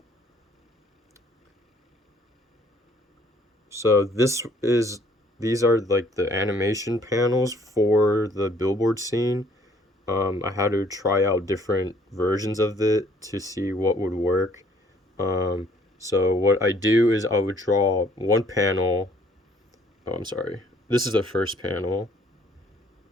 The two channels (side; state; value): both; normal; correlation 0.62